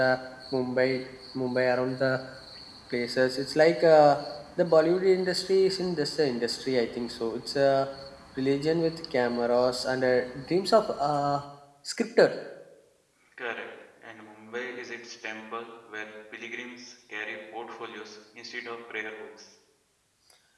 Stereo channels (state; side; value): identical; both; correlation 1.00